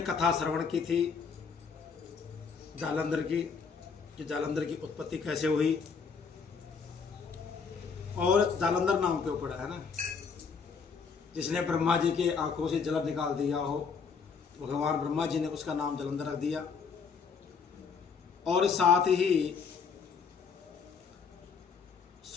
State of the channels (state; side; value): quieter; right; 5.7 dB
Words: कथा श्रवण की थी जालंधर की कि जालंधर की उत्पत्ति कैसे हुई और जालंधर नाम क्यों पड़ा है ना। जिसने ब्रह्मा जी के आंखों से जल निकाल दिया हो भगवान ब्रह्मा जी ने उसका नाम जालंधर रख दिया। और साथ ही